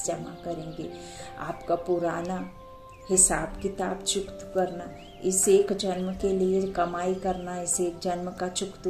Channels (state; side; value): identical; both; correlation 1.00